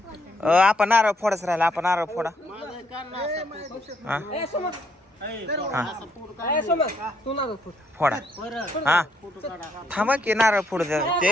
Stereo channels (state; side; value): normal; both; correlation 0.72